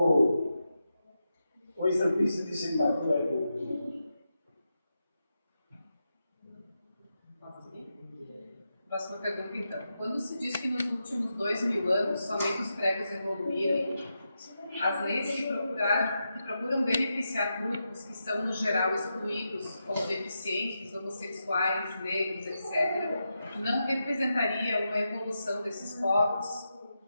o estampista de Singapura é o. Próxima pergunta, então. Quando se diz que nos últimos 2000 anos somente os pregos evoluíram, as leis que procuram beneficiar grupos que são, no geral, excluídos, como deficientes, homossexuais, negros, etc., não representaria uma evolução desses povos?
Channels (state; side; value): inverted; both; correlation -0.87